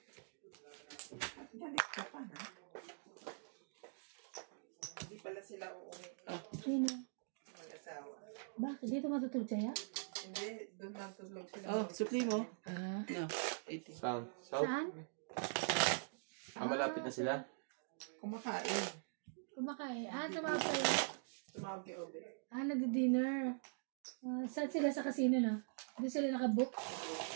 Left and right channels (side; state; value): left; silent; digital silence